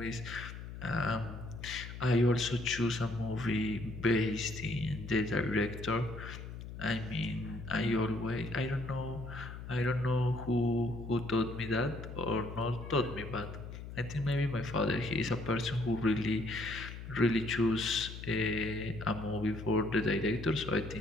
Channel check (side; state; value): left; noise; hum, 10 dB below the sound